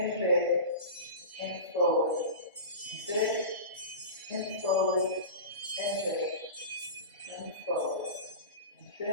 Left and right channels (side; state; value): both; inverted; correlation -0.31